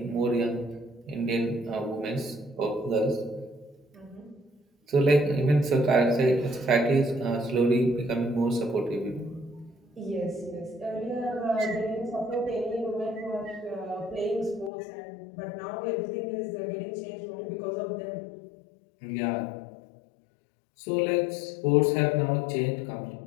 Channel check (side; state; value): right; drops out; at 14.7 s